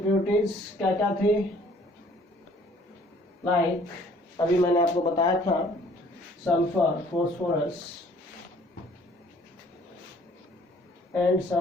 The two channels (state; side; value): normal; both; correlation 0.57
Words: क्या क्या थे, लाइक अभी मैंने आपको बताया था sulphur, phosphorus and